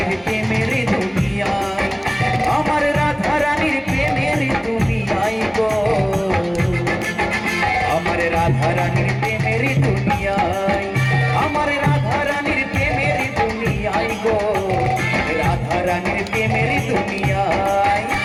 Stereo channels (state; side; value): identical; both; correlation 1.00